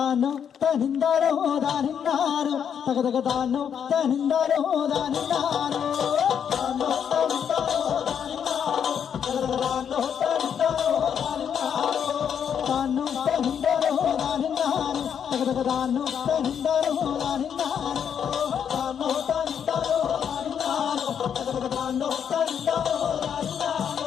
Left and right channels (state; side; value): quieter; right; 8.1 dB